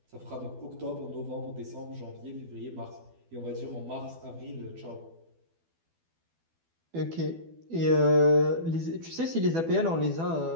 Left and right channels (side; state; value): left; late; 12 ms